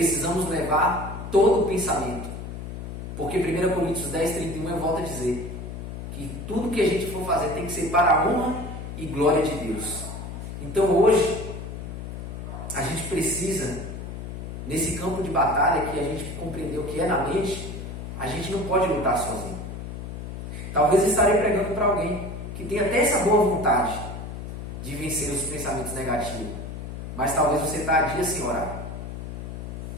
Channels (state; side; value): noise; left; hum, 8 dB below the sound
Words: levar todo o pensamento. Porque 1 Coríntios 10:31 eu volto a dizer que tudo que a gente for fazer tem que ser para a honra e glória de Deus. Então hoje, a gente precisa, nesse campo de batalha que a gente compreendeu que é na mente, a gente não pode lutar sozinho. Talvez eu estarei pregando para alguém que tem até essa boa vontade de vencer os pensamentos negativos, mas talvez você está há dias sem orar.